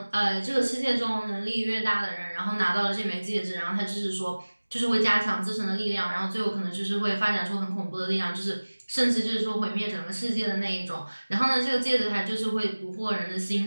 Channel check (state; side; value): inverted; both; correlation -1.00